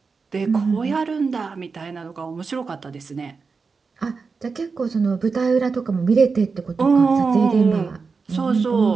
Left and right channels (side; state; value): left; quieter; 4.8 dB